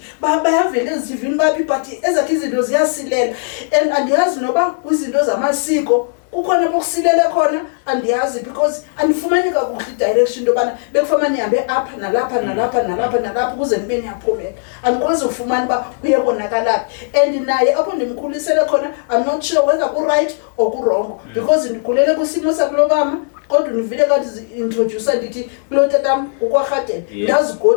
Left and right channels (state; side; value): silent; right; 68 dB below the other